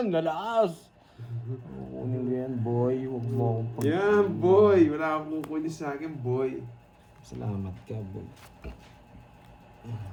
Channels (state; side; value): identical; both; correlation 1.00